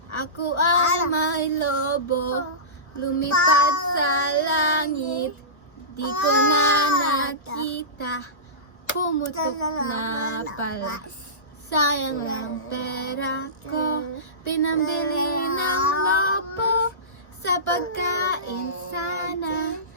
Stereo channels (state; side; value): late; right; 1.2 ms